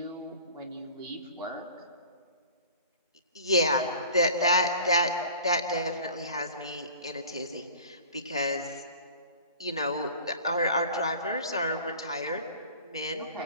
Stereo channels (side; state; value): both; inverted; correlation -0.43